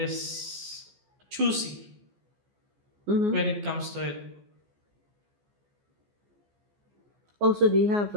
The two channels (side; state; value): left; late; 14 ms